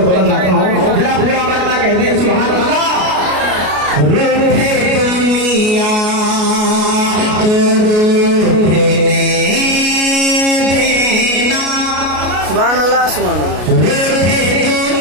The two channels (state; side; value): late; left; 33 ms